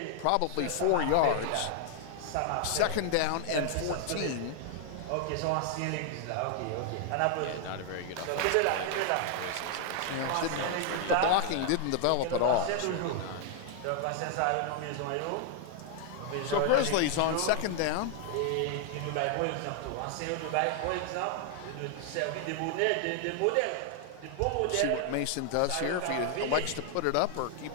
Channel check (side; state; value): both; different; correlation 0.00